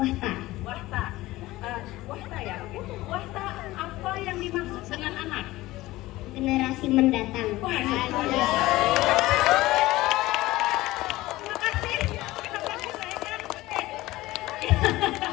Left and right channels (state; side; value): quieter; right; 18.0 dB